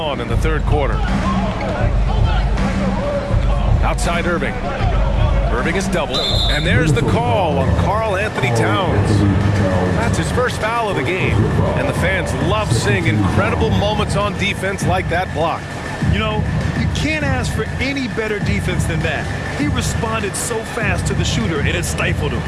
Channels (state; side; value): identical; both; correlation 1.00